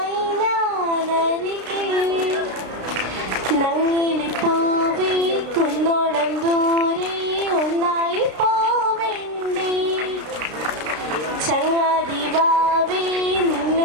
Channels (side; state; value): left; late; 33 ms